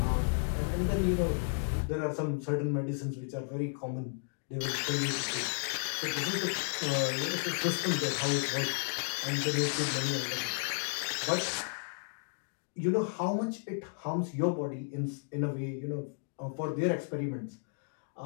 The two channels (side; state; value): right; silent; digital silence